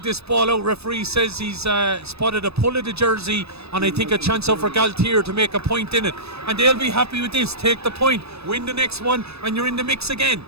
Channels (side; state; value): left; late; 0.79 ms